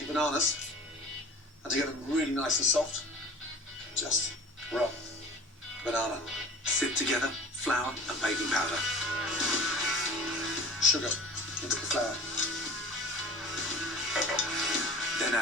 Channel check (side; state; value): both; normal; correlation 0.42